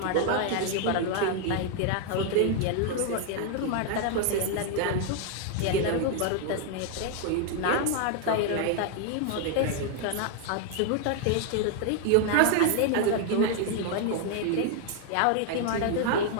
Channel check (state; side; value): different; both; correlation 0.00